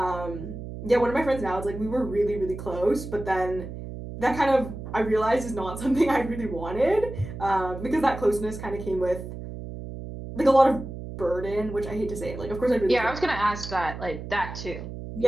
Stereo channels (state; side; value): noise; right; hum, 9 dB below the sound